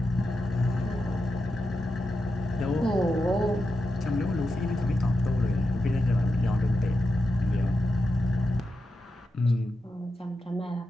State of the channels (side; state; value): both; normal; correlation 0.88